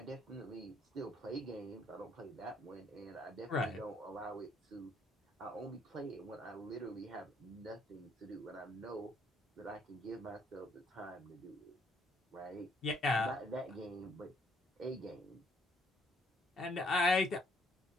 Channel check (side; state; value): both; normal; correlation 0.68